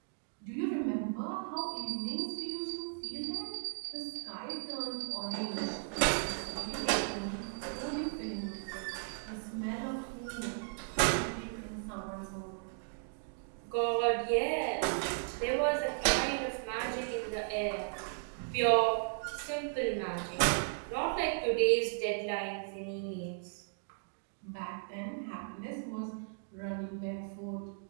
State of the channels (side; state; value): left; silent; digital silence